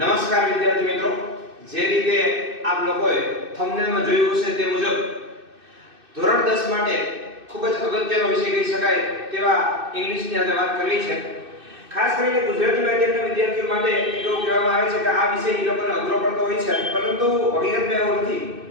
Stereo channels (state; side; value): late; left; 2.6 ms